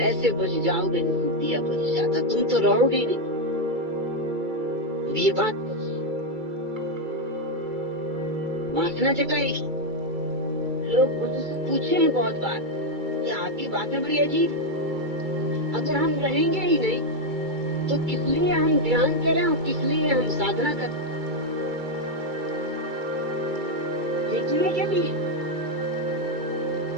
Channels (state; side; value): late; left; 2.3 ms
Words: बुझ जाओगे जैसे दिया बुझ जाता, तुम तो रहोगे ही नहीं। ये बात वासना जगाएगी। लोग बुद्ध से पूछे हैं बहुत बार कि आपकी बातें बड़ी अजीब है, अगर हम रहेंगे ही नहीं तो किस लिए हम ध्यान करें और किस लिए हम साधना करें? देखने के लिए,